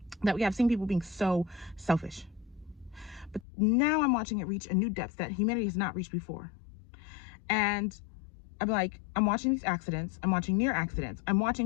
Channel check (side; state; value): right; drops out; at 3.5 s